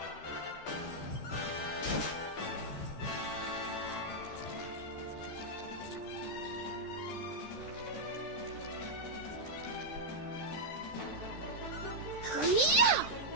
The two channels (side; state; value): right; late; 13 ms